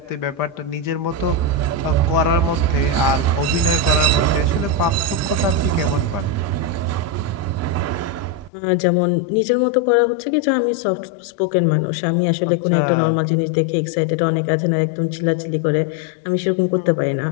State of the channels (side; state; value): right; drops out; at 8.5 s